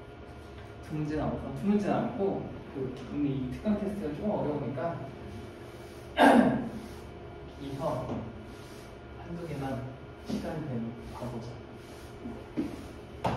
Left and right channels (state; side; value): identical; both; correlation 1.00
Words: 드문진 않고 근데 이 특강 테스트가 좀 어려우니까 이서 한두 개만 시간이 되면 봐보자.